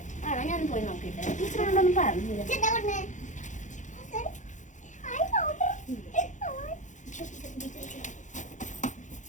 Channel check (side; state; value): right; late; 0.36 ms